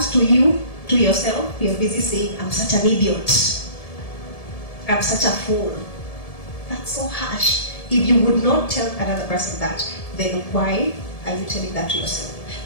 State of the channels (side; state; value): right; late; 1.7 ms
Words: to you, to yourself, you're busy saying, I'm such an idiot. I'm such a fool. That's so harsh. If you would not tell another person that, then why are you telling that to yourself?